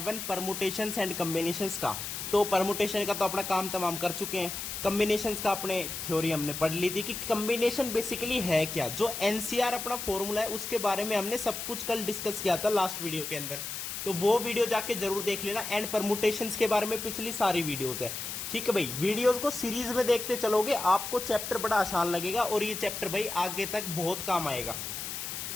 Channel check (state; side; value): noise; left; hiss, 6 dB below the sound